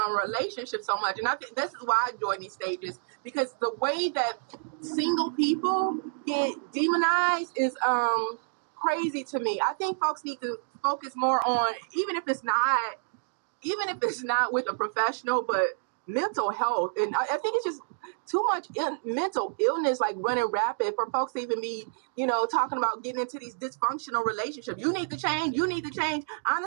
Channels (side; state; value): left; silent; digital silence